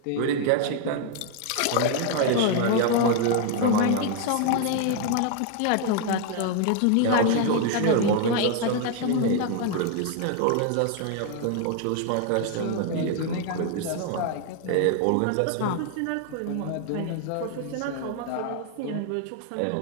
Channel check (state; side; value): different; both; correlation 0.01